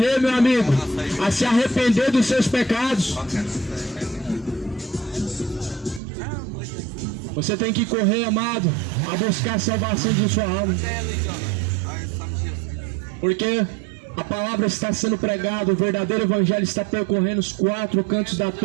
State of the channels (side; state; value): left; drops out; at 6.0 s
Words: meu amigo, a se arrepender dos seus pecados. Você tem que correr, amado, a buscar a salvação de sua alma. Porque a palavra está sendo pregada, o verdadeiro evangelho está percorrendo os quatro cantos da